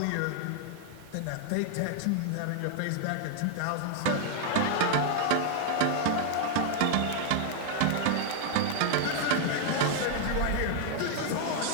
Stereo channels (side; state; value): both; different; correlation 0.00